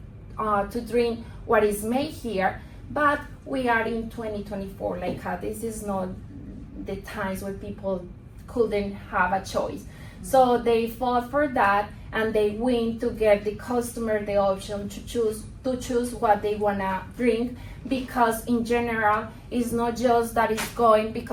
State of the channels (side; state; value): both; identical; correlation 1.00